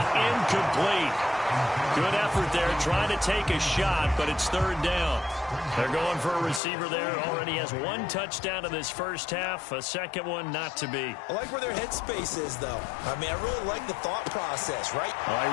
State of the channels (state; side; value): drops out; right; at 6.6 s